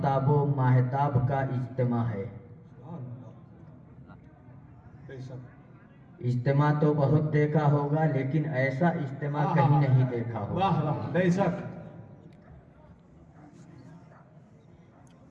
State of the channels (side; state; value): both; identical; correlation 1.00